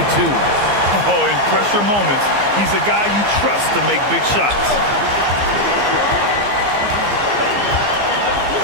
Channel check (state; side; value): late; left; 15 ms